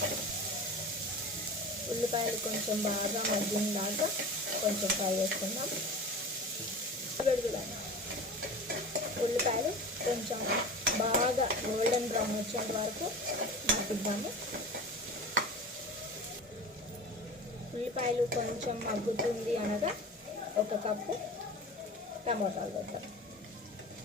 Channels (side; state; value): both; normal; correlation 0.34